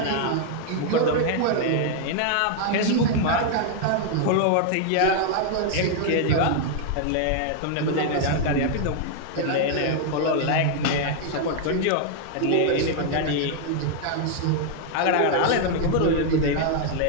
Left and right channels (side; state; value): both; different; correlation 0.00